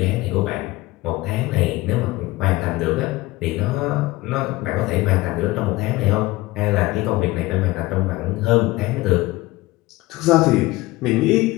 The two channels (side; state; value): right; quieter; 19.6 dB